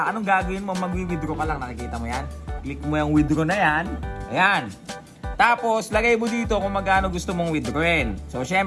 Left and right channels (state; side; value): identical; both; correlation 1.00